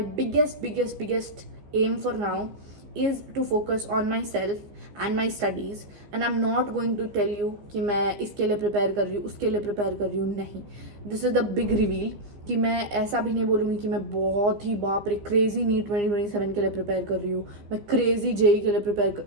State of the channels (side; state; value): left; late; 15 ms